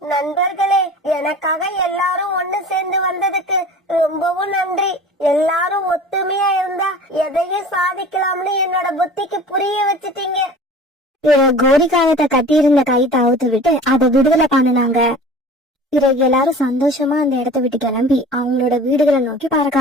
நண்பர்களே, எனக்காக எல்லாரும் ஒண்ணு சேர்ந்து வந்ததுக்கு ரொம்பவும் நன்றி. எல்லாரும் ஒத்துமையா இருந்தா எதையும் சாதிக்கலாம்னு என்னோட புத்திக்கு புரிய வச்சுட்டீங்க. கோரிக்காகத்தை கட்டியிருந்த கைத்தை அவுத்து விட்டு அதை விடுதலை பண்ணினாங்க. பிறகு எல்லாரும் சந்தோஷமா அந்த இடத்த விட்டு கிளம்பி அவங்களோட வீடுகளை நோக்கி பறக்க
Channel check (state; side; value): normal; both; correlation 0.41